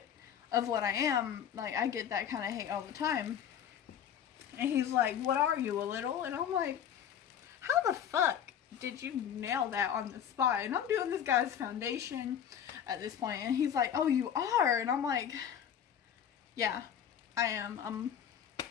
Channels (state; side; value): quieter; right; 9.1 dB